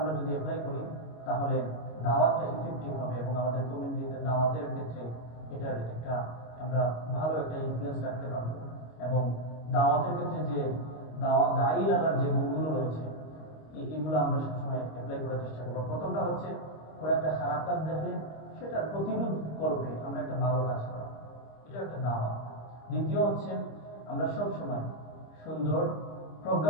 যদি অ্যাপ্লাই করি তাহলে দাওয়াতটা ইফেক্টিভ হবে এবং আমাদের কমিউনিটিতে দাওয়াতের ক্ষেত্রে এটার একটা আমরা ভালো একটা ইনফ্লুয়েন্স রাখতে পারবো। এবং দাওয়াতের ক্ষেত্রে যে দায়ী লাগার যে গুণগুলো রয়েছে, এগুলো আমরা সবসময় অ্যাপ্লাই করার চেষ্টা করবো। প্রথমটা হচ্ছে কোনো একটা খারাপ কাজ দেখলে সেটার প্রতিরোধ করবে আমরা একটা ভালো কাজ করা, এটা একটা দাওয়া। দ্বিতীয় হচ্ছে আমরা সবসময় সুন্দর,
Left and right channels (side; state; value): right; late; 26 ms